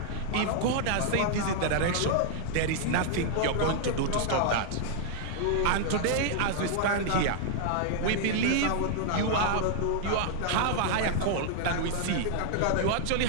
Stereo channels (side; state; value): both; different; correlation -0.01